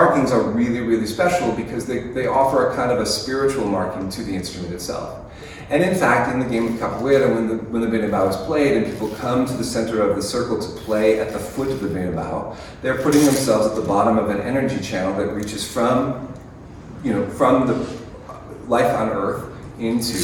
are really, really special because they offer a kind of a spiritual marking to the instrument itself. And in fact, in the game of capoeira, when the berimbau is played and people come to the center of the circle to play at the foot of the berimbau, they're putting themselves at the bottom of an energy channel that reaches from the life on earth into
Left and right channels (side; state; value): both; identical; correlation 1.00